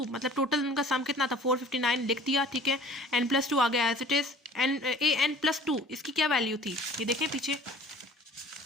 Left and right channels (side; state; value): both; normal; correlation 0.48